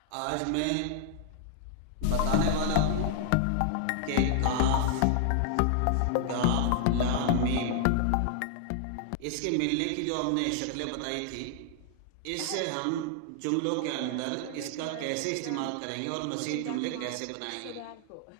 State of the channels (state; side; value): different; both; correlation 0.00